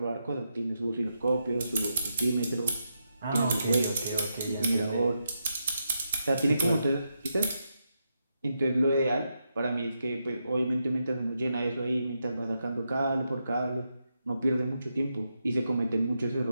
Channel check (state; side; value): inverted; both; correlation -0.84